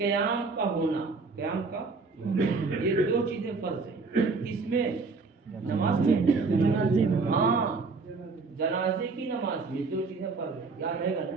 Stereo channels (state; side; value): quieter; left; 4.2 dB